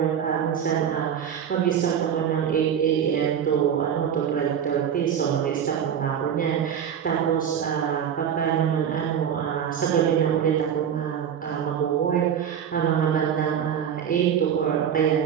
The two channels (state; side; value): quieter; left; 8.6 dB